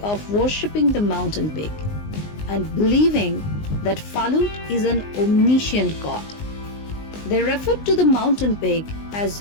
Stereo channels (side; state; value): right; late; 19 ms